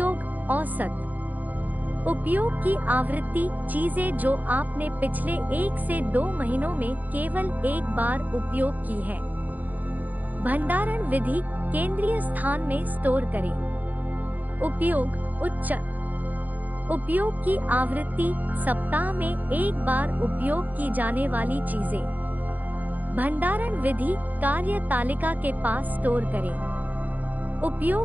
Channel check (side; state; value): left; late; 0.081 ms